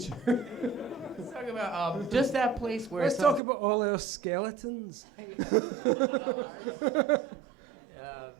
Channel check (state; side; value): drops out; left; at 3.4 s